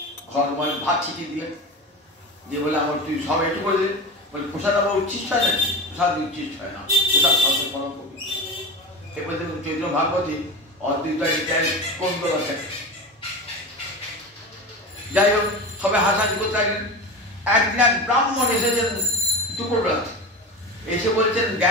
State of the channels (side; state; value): both; normal; correlation 0.26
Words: ঘর মানে ভাত ছিটিয়ে দিলেন, যে বলে আমার তুই সব একটু করে দিলেন, বলে প্রসাদ আবার উচ্ছিষ্ট হয় নাকি? প্রসাদ উচ্ছিষ্ট হয় না, প্রসাদ সব পরম কবি। এরপরে দেখুন চৈত্র ভাগবতী অদ্বৈত কোন আছে। যাই হোক, সবাই হাসাহাসি করতে থাকলেন। একদিন এক ব্রাহ্মণ এসেছেন দুপুরবেলাতে, এসে বলছেন